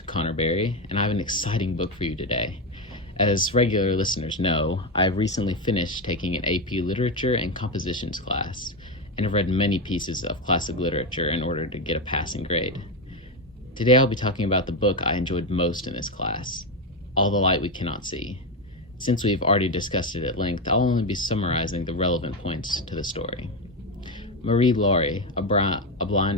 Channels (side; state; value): both; normal; correlation 0.12